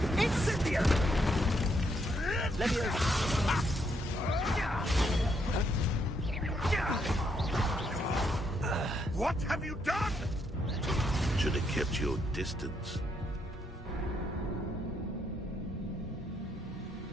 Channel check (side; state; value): both; normal; correlation 0.75